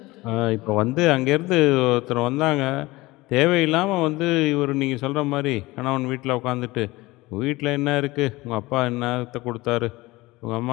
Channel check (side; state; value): right; quieter; 20.5 dB